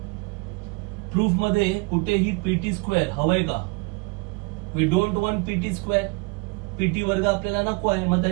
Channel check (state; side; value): quieter; left; 29.0 dB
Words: Proof मध्ये कुठेही PT स्क्वेअर हवंय का? We don't want PT square. PT वर्ग आपल्याला नको आहे, मग